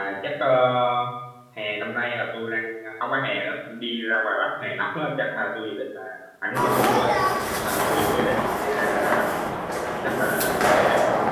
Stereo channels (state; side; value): identical; both; correlation 1.00